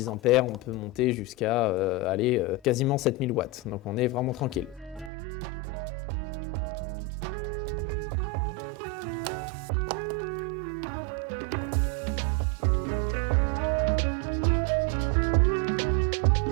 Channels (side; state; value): left; drops out; at 5.1 s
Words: ampères, on peut monter jusqu'à quasiment 7000 watts. Donc on est vraiment tranquille.